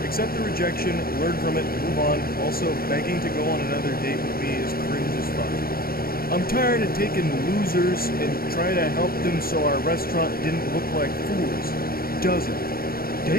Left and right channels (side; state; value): right; late; 0.43 ms